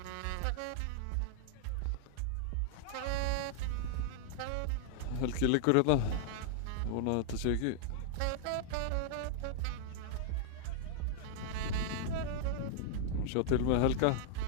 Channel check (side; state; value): both; different; correlation -0.01